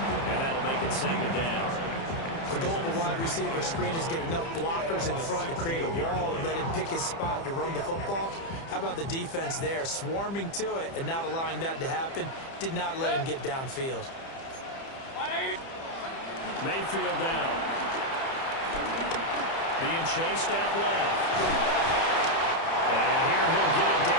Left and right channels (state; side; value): late; right; 30 ms